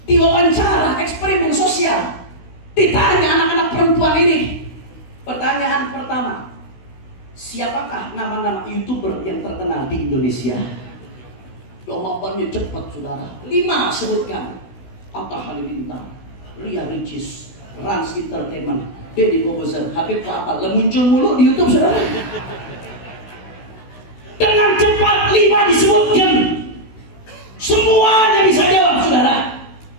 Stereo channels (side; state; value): right; late; 16 ms